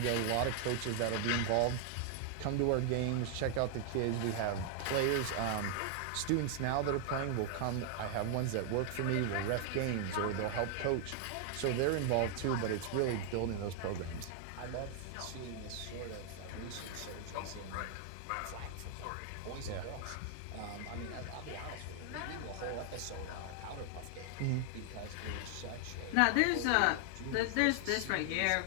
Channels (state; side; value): different; both; correlation 0.00